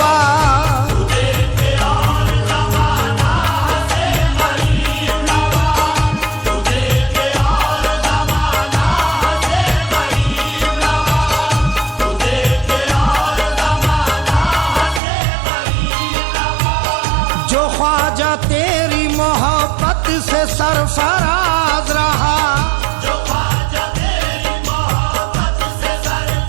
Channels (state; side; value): drops out; left; at 15.0 s